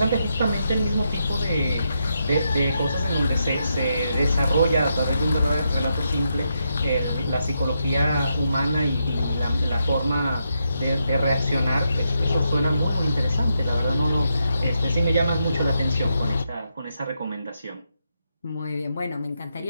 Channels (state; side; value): inverted; both; correlation -0.82